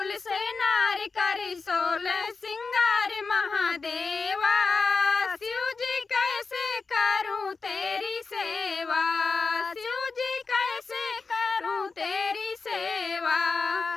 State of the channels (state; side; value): quieter; right; 4.5 dB